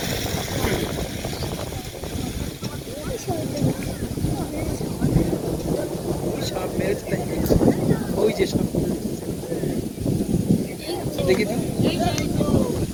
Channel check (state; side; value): identical; both; correlation 1.00